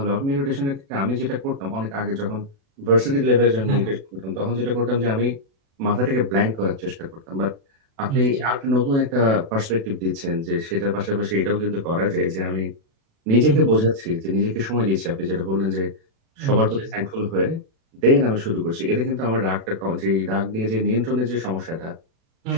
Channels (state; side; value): late; left; 36 ms